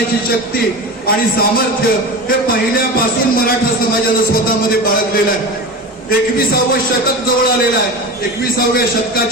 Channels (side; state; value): both; normal; correlation 0.28